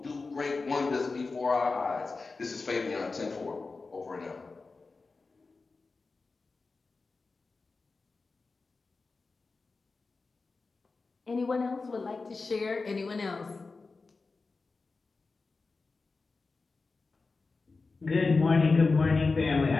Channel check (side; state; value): right; quieter; 4.0 dB